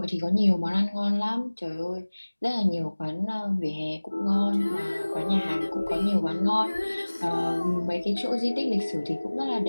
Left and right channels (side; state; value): both; inverted; correlation -1.00